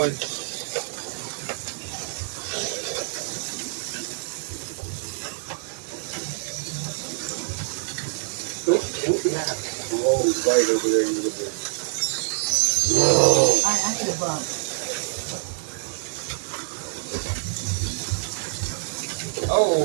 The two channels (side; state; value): left; silent; digital silence